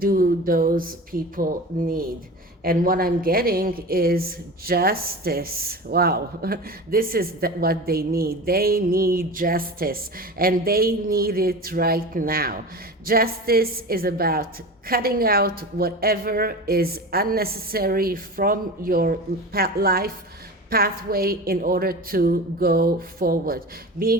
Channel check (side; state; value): both; normal; correlation 0.31